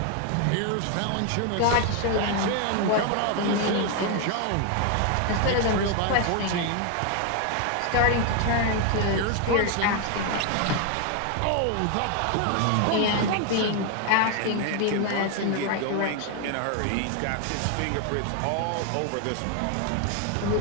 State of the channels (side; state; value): both; different; correlation 0.01